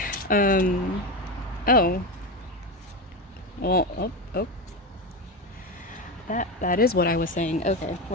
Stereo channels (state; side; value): normal; both; correlation 0.17